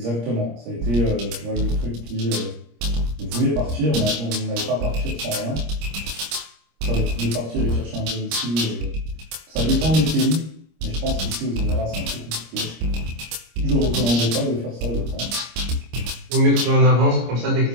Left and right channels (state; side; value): late; left; 25 ms